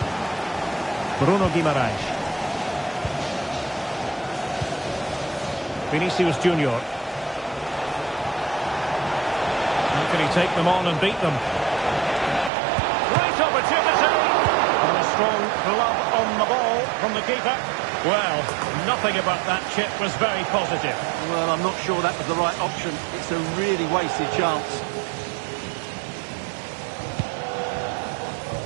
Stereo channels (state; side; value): drops out; left; at 12.5 s